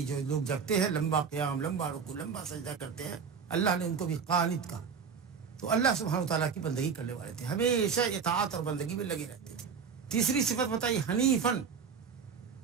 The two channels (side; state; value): left; quieter; 6.2 dB